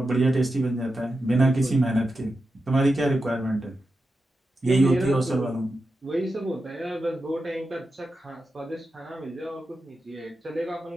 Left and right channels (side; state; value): both; normal; correlation 0.90